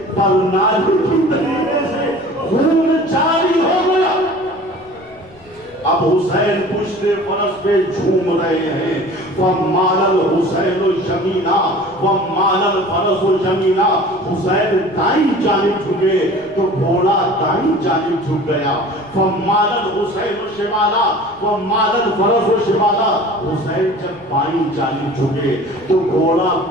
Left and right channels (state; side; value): noise; left; rumble, 27 dB below the sound